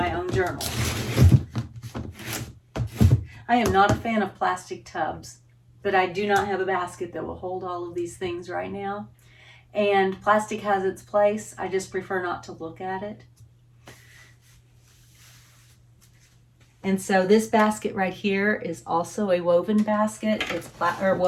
own journal. I am not a fan of plastic tubs, but I do not have a basket that will hold all of these things right now. And plastic has its place. I just prefer not to look at it. And so this basket right here is also a woven basket. It's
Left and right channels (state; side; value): identical; both; correlation 1.00